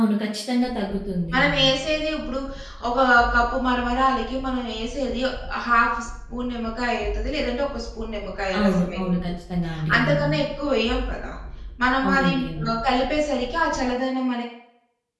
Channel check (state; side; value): identical; both; correlation 1.00